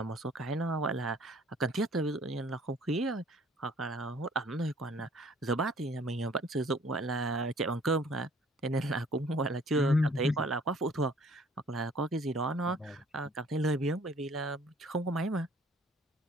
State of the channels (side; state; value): both; normal; correlation 0.56